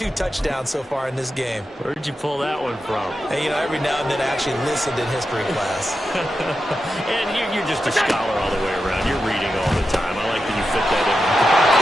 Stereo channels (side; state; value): both; normal; correlation 0.89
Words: touchdowns so far in this game. Where did you pull that one from? And, you know, every now and then I actually listened in history class. And you're just a scholar all the way around. You're reading all the time. I like that you fit that in.